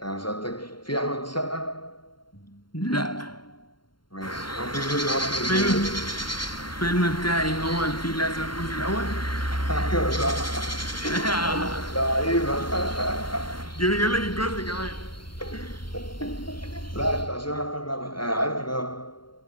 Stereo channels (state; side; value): late; right; 0.72 ms